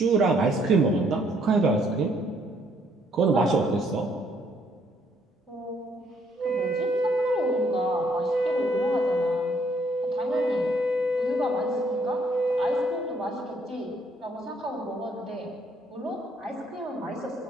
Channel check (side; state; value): both; normal; correlation 0.68